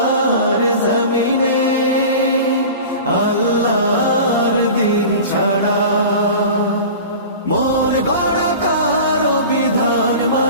জমিনে আল্লাহর দিন ছাড়া মন গড়া কারো বিধান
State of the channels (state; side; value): inverted; both; correlation -0.36